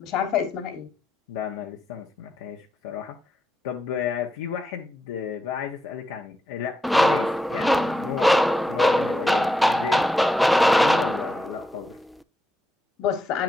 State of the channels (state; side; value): normal; both; correlation 0.84